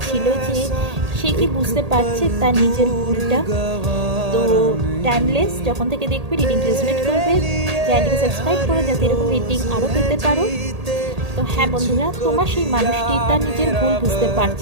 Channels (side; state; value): left; late; 1.8 ms